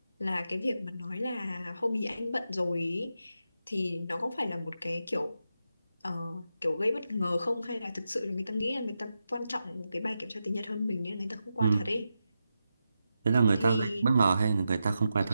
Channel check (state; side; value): inverted; both; correlation -0.89